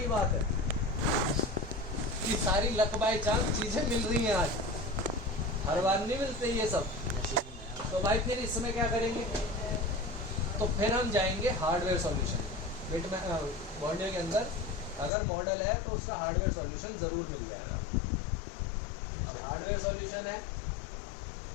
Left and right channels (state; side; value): drops out; right; at 15.1 s